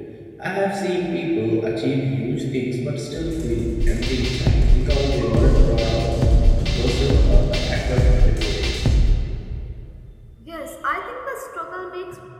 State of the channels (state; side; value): identical; both; correlation 1.00